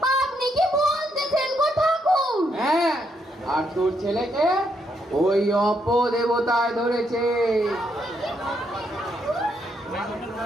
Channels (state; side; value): normal; both; correlation 0.76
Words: আপনি কি বলতেছেন গো ঠাকুর? হ্যাঁ, আর তোর ছেলেকে ওই অপদেবতায় ধরেছে,